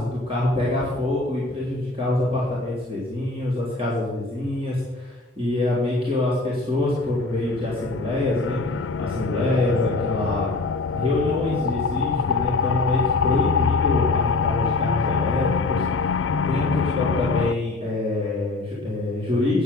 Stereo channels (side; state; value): right; quieter; 3.1 dB